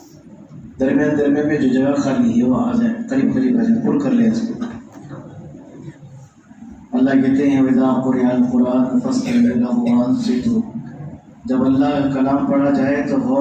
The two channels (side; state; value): both; identical; correlation 1.00